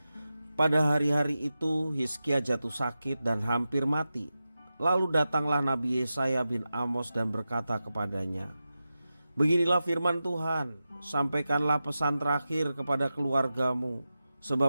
Pada hari-hari itu Hizkia jatuh sakit dan hampir mati. Lalu datanglah Nabi Yesaya bin Amos dan berkata kepadanya, "Beginilah firman Tuhan, sampaikanlah pesan terakhir kepada keluargamu,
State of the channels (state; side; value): inverted; both; correlation -0.92